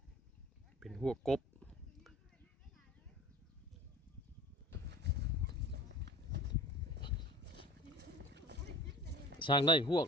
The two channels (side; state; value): both; normal; correlation 0.39